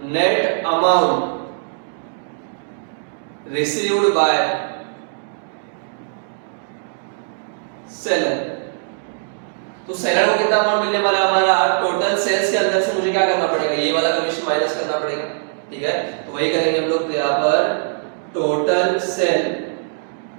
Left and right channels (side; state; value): left; silent; digital silence